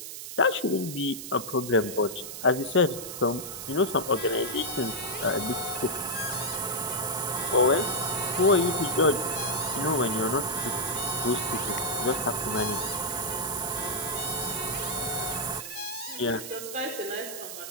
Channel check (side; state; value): right; noise; hiss, 9 dB below the sound